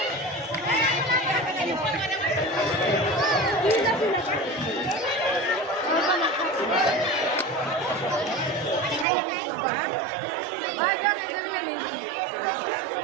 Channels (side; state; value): left; drops out; at 9.1 s